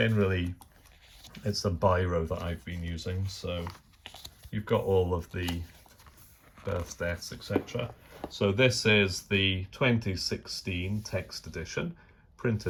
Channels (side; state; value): both; identical; correlation 1.00